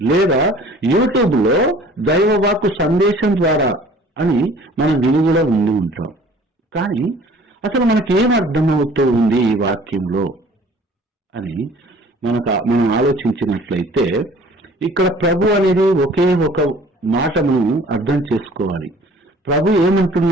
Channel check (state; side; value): normal; both; correlation 0.50